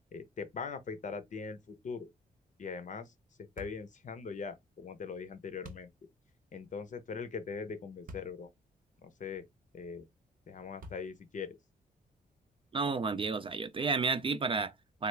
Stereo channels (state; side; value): normal; both; correlation 0.27